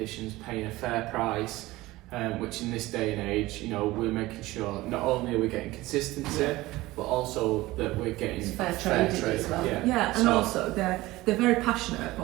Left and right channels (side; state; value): left; quieter; 18.7 dB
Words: paying a fair price, which in this day and age, you know, we're making sure not only are we getting consistency, but also that we're getting fair trade as well. Yeah, and also they're very passionate,